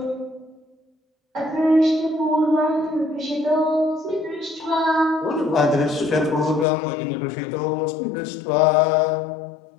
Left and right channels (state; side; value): drops out; right; at 6.7 s